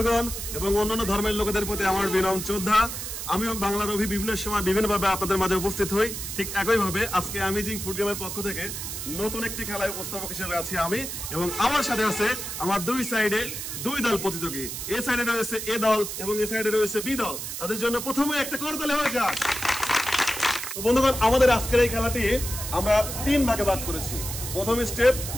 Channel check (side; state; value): right; noise; hiss, 6 dB below the sound